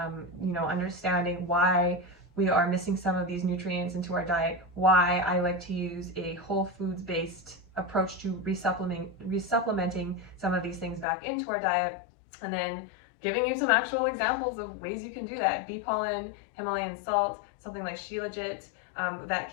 understanding why we are missing some of these nutrients into our diet, why I like to use a whole foods based approach to resupplementing some of these things back into our diet, and then giving you some actual examples of ways you can do that. Bee pollen, Himalayan salt, something like Shilajit, that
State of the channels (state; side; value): drops out; right; at 11.1 s